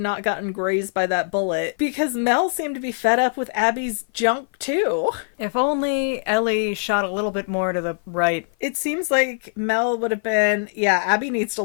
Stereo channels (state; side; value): silent; right; 56 dB below the other